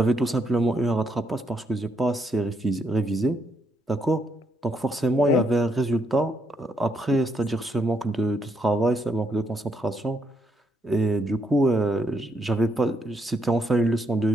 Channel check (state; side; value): normal; both; correlation 0.76